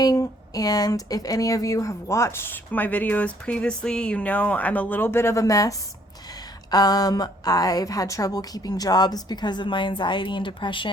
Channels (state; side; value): normal; both; correlation 0.63